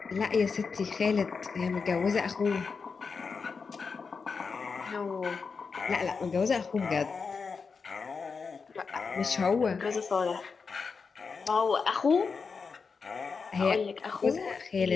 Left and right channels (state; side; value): quieter; right; 5.1 dB